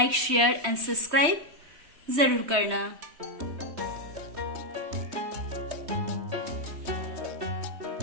शेयर एंड सब्सक्राइब ज़रूर करना।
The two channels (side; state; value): left; late; 3.2 ms